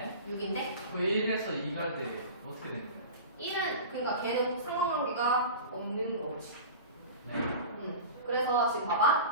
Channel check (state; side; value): inverted; both; correlation -0.34